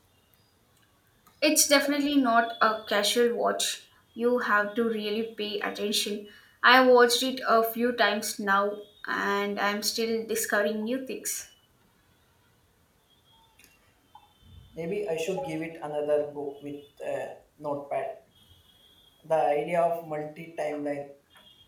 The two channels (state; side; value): identical; both; correlation 1.00